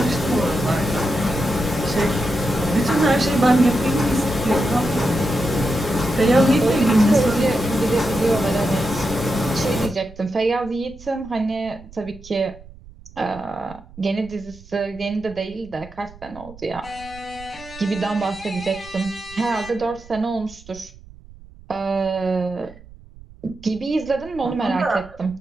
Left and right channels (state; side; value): noise; right; rumble, 20 dB below the sound